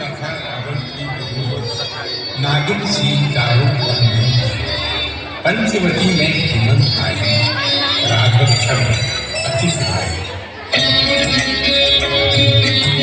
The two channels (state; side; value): identical; both; correlation 1.00